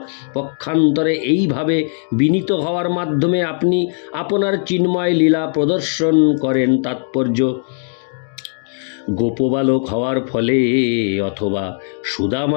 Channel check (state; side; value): silent; right; 65 dB below the other